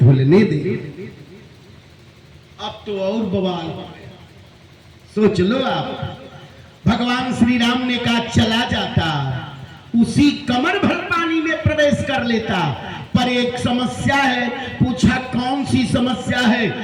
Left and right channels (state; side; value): identical; both; correlation 1.00